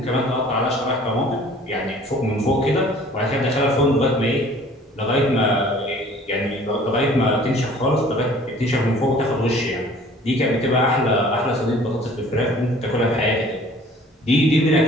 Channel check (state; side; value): normal; both; correlation 0.51